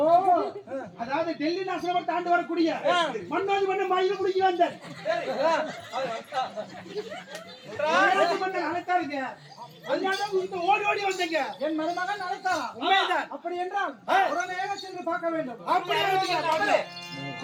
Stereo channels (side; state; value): both; identical; correlation 1.00